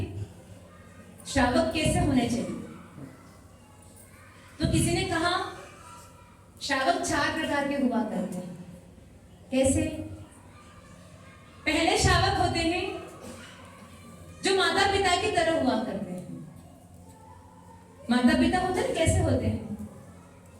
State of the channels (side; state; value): both; identical; correlation 1.00